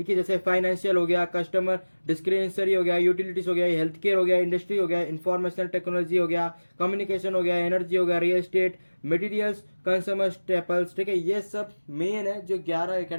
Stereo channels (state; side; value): inverted; both; correlation -1.00